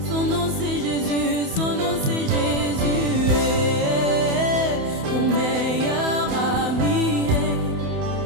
son nom c'est Jésus, son nom c'est Jésus. Mon meilleur ami,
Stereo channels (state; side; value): late; left; 28 ms